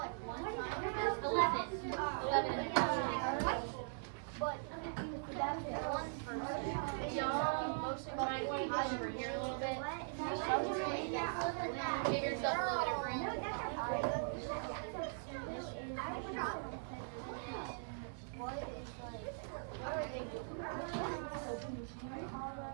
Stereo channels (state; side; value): silent; left; 51 dB below the other